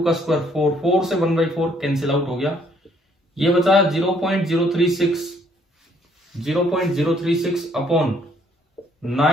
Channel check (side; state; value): both; normal; correlation 0.65